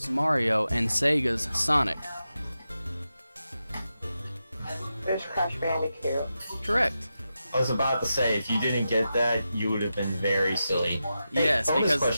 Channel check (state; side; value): inverted; both; correlation -0.90